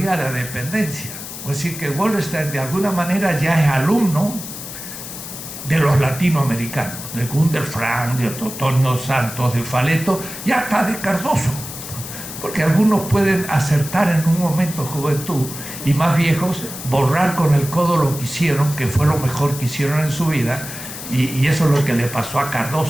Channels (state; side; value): noise; left; hiss, 10 dB below the sound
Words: de la dependencia. Es decir, que Wallerstein de alguna manera ya es alumno de los latinoamericanos, de Gunder Frank, de Totonio Santos, de Faleto, y hasta de Cardoso, porque algunos pueden acertar en un momento de juventud y más viejos borrar con el codo lo que hicieron, que fue lo mejor que hicieron en su vida, y eso es lo que le pasó a